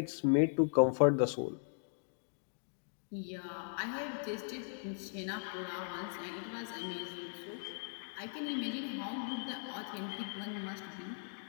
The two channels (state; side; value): silent; right; digital silence